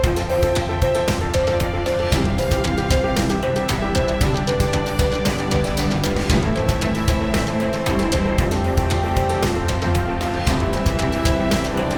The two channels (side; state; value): both; identical; correlation 1.00